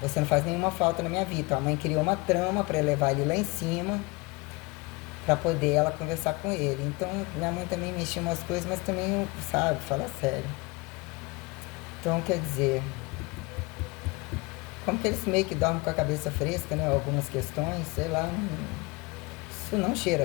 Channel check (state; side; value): quieter; right; 25.5 dB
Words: não faz nenhuma falta na minha vida. Então, a mãe criou uma trama para levar ele lá em cima, para poder ela conversar com ele. Então, minha mãe também mexia umas coisas, mas também, sabe, fala sério. Então, quer dizer, como que eles meio que dormem com a cabeça fresca, né? Algumas questões, sei lá, isso não cheira